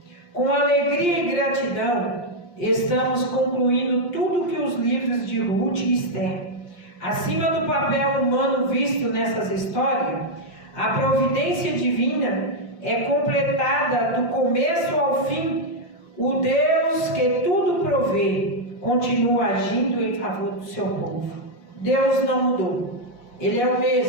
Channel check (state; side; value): late; right; 5.7 ms